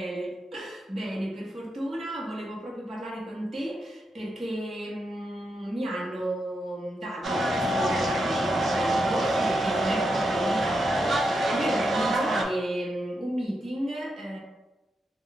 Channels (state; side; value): normal; both; correlation 0.85